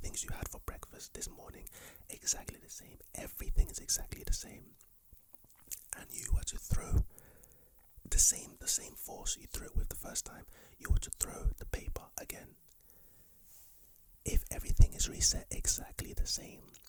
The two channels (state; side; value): identical; both; correlation 1.00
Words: you had for breakfast this morning, exactly the same. Everything is exactly the same. And you were to throw the same force you threw it with the first time, you were to throw the paper again. If everything is reset exactly the same,